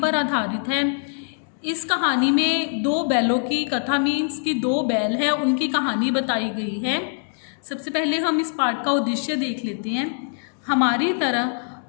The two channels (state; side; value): silent; right; digital silence